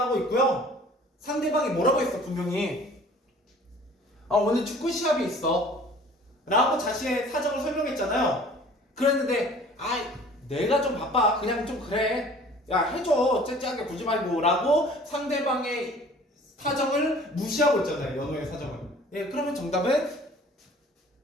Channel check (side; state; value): both; normal; correlation 0.50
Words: 있고요. 상대방이 뭐라고 했어, 분명히. 오늘 축구 시합이 있어 라고 자신의 사정을 설명했잖아요. 그랬는데 내가 좀 바빠 그냥 좀 그래 야 해줘 째째하게 굴지 말고 라고 상대방의 사정을 무시하고 있잖아요. 연호의 사정을. 예, 그러면 정답은